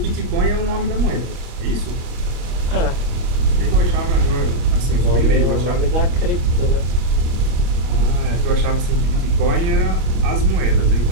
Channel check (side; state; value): left; late; 26 ms